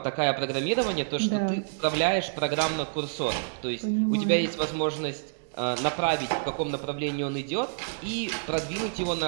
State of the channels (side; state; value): left; silent; digital silence